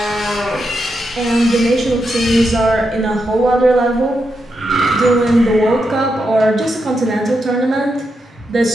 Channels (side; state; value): both; normal; correlation 0.84